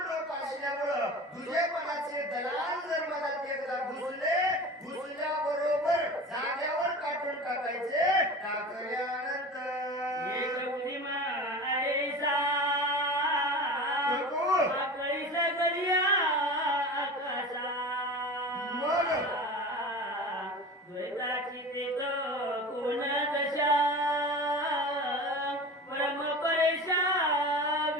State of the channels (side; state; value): both; normal; correlation 0.33